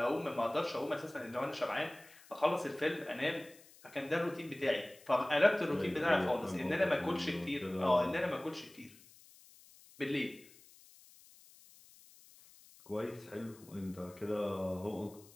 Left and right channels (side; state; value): left; noise; hiss, 24 dB below the sound